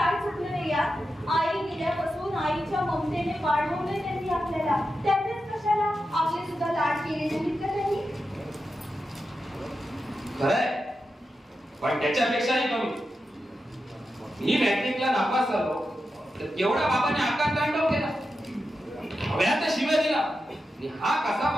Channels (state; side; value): normal; both; correlation 0.89